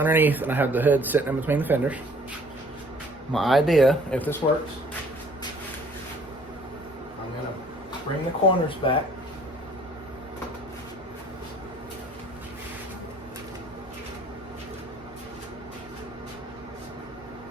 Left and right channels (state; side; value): normal; both; correlation 0.56